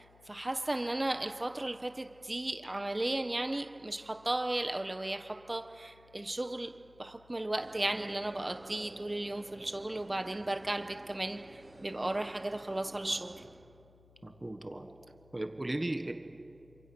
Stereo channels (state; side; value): noise; left; hum, 25 dB below the sound